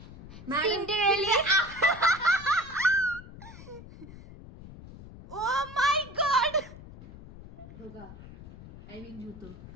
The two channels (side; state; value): left; noise; rumble, 16 dB below the sound